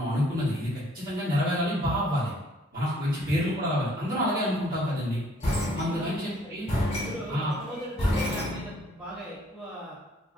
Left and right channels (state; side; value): normal; both; correlation 0.62